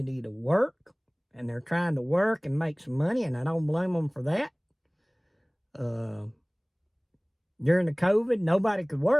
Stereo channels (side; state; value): both; identical; correlation 1.00